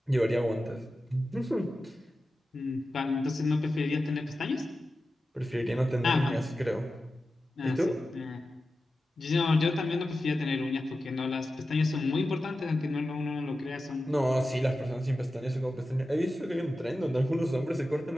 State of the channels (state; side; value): normal; both; correlation 0.93